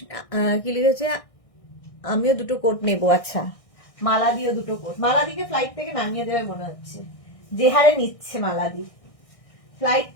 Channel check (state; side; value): late; right; 1.6 ms